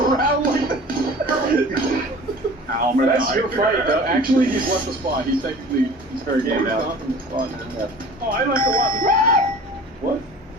like that. Ow, That's your fight, though. Actually, he's left the spot. He's very game now. Oh, I like a lot. What?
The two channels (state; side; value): normal; both; correlation 0.43